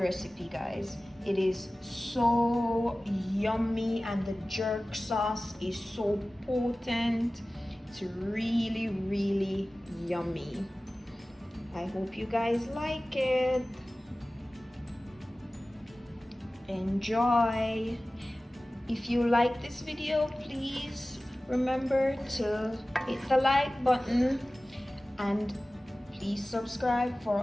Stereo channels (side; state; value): both; normal; correlation 0.97